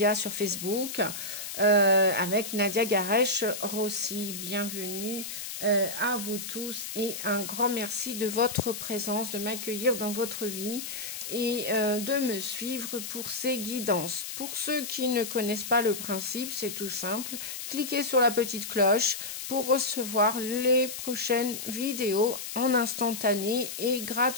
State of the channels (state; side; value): noise; left; hiss, 7 dB below the sound